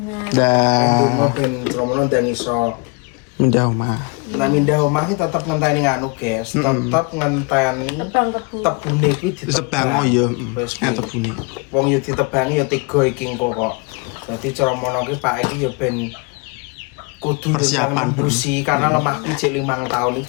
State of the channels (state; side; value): quieter; right; 31.3 dB